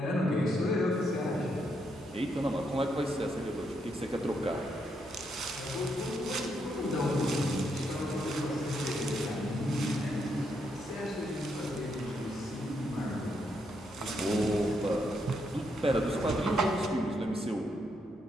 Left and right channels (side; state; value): both; normal; correlation 0.78